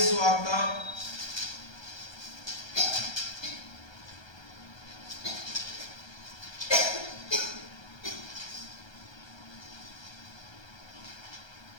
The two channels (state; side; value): late; right; 1.3 ms